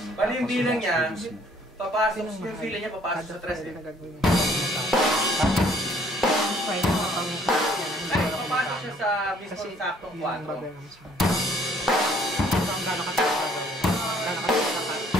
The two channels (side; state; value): both; normal; correlation 0.61